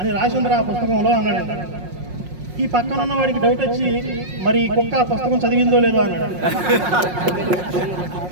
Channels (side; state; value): left; late; 5.5 ms